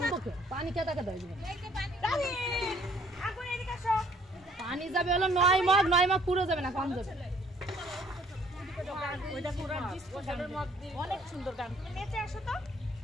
पानी क्या तक पानी যাবে হলো 9 মগ পুরো যাবে না কম যাবে ওইটা পুরো ডিসপোজালের মগ অনেক সুন্দর গান নেচে আসো তো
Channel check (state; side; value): normal; both; correlation 0.60